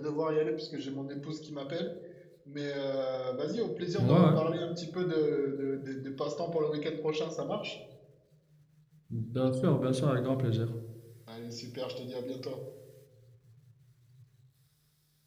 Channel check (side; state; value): both; identical; correlation 1.00